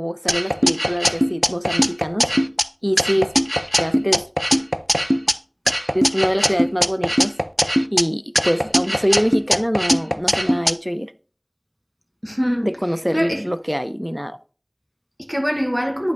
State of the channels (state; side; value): identical; both; correlation 1.00